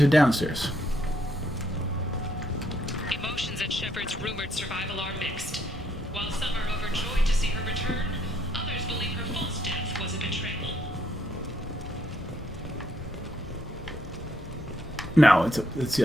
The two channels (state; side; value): normal; both; correlation 0.72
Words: or downstairs? Emotions at Shepard's rumored survival are mixed. While some are overjoyed to see her return, others believe her false death was a betrayal. No, it's the